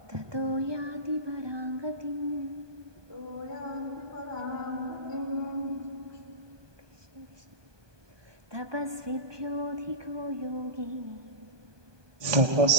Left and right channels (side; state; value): left; late; 1.2 ms